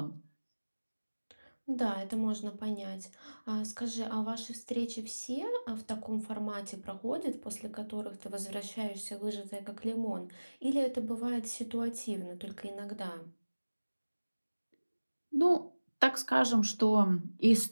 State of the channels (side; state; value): both; inverted; correlation -1.00